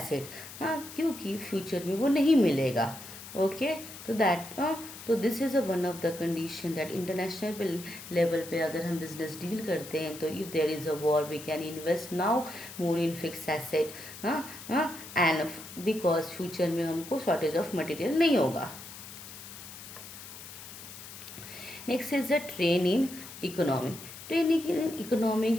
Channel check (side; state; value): left; noise; hiss, 14 dB below the sound